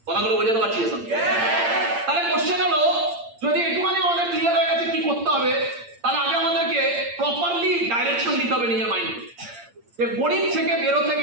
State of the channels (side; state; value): left; late; 8.7 ms